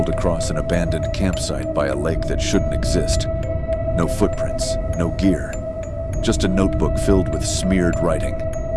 across an abandoned campsite by a lake that shouldn't exist. No footprints, no gear, just a notebook filled with smeared writing.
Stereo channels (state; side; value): identical; both; correlation 1.00